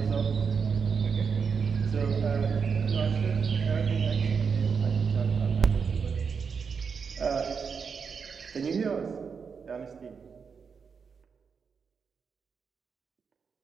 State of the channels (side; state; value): left; quieter; 5.9 dB